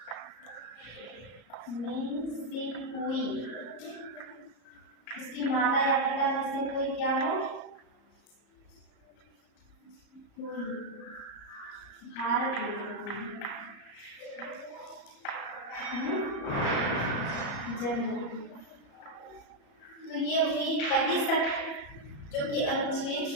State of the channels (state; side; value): late; right; 34 ms